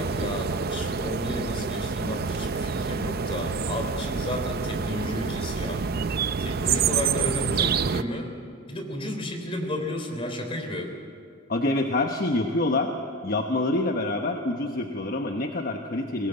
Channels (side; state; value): both; normal; correlation 0.31